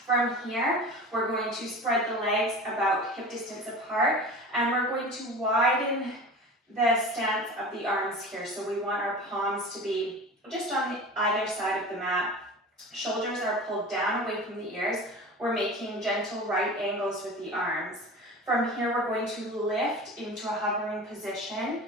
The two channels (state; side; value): normal; both; correlation 0.35